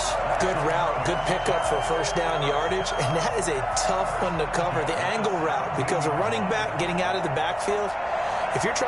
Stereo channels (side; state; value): both; identical; correlation 1.00